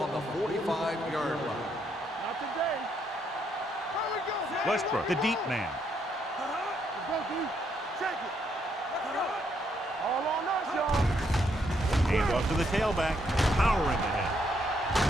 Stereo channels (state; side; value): normal; both; correlation 0.74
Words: on the 45-yard line. Not today. Here we go. Westbrook, the deep man. Let's go, D. Check it. All on us, y'all. Hand off to the tailback. Powering ahead.